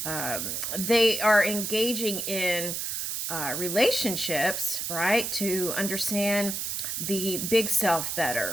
they are engaging in relationships, right, to understand the big self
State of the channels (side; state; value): right; noise; hiss, 3 dB below the sound